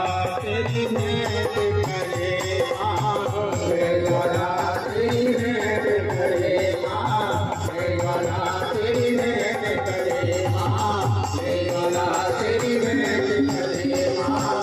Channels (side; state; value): both; identical; correlation 1.00